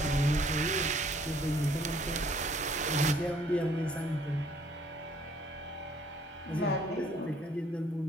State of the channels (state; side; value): normal; both; correlation 0.61